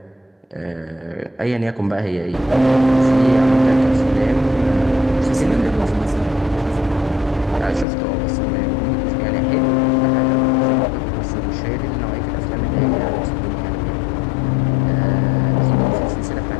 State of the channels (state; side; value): drops out; right; at 7.9 s